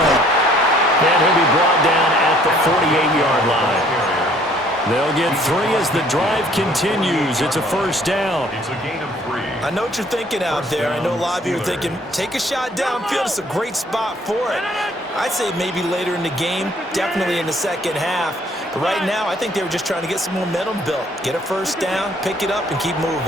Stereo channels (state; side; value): normal; both; correlation 0.60